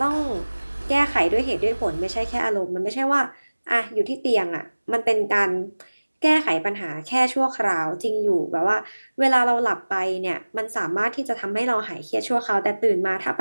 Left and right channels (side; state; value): both; inverted; correlation -1.00